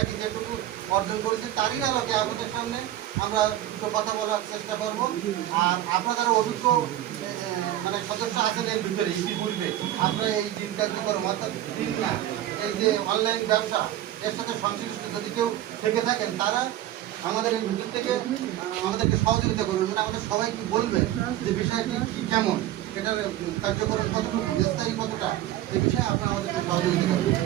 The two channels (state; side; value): quieter; left; 13.4 dB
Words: যেটুকু অর্জন করেছি তারই আলোকে আপনাদের সামনে আমরা দুটো কথা বলার চেষ্টা করব। আর আপনারা যারা অভিজ্ঞ মানে সদস্য আছেন এর ভিতরে ইতিপূর্বে আপনারা এই দিন কার্যক্রম অর্থাৎ দিন না এই যে অনলাইন ব্যবসা এর সাথে সংশ্লিষ্ট যদি কেউ থেকে থাকেন তারা আমাদের এই ভিতর থেকে আমাদেরকে সহযোগিতা করবেন, মানে আমাদের সবাইকে বলবেন যে বিষয়টি কি কেমন, এটার কার্যকরণ কতটুকু, বিস্তারিত কতটা, এই বিষয়ে আপনারা আমাদেরকে সহযোগিতা করবেন।